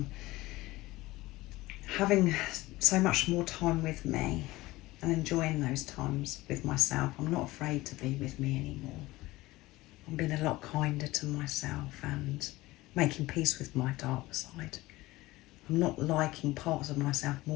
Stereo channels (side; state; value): right; quieter; 19.1 dB